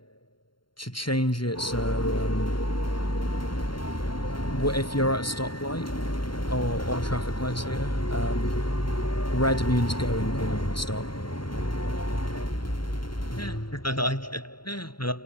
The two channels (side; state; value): right; late; 0.73 ms